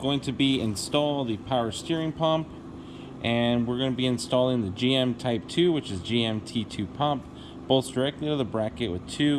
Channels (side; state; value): both; identical; correlation 1.00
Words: to be install the power steering pump. And we're going to be installing the GM Type 2, which is GM T2 pump. Bolts directly to the bracket with